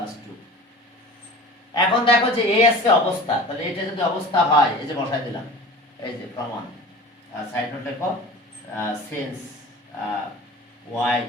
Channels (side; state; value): both; normal; correlation 0.38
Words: 2 এখন দেখো যে a আছে অবস্থা তাহলে এটা যদি অবস্থা হয় এই যে বসাই দিলাম এই যে প্রমাণ সাইড নোট লেখো since y